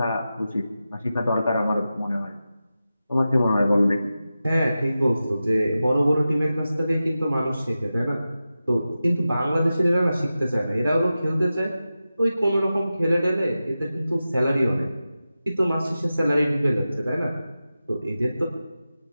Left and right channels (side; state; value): both; inverted; correlation -0.93